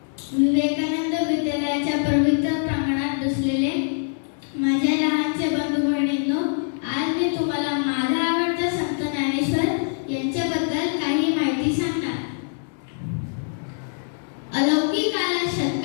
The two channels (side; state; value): right; silent; digital silence